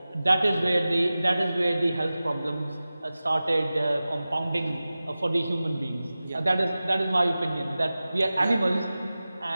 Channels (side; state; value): both; inverted; correlation -0.96